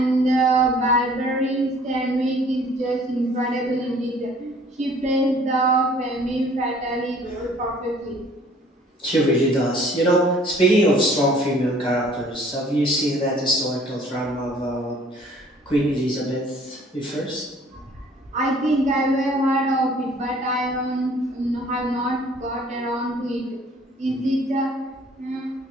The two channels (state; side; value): normal; both; correlation 0.55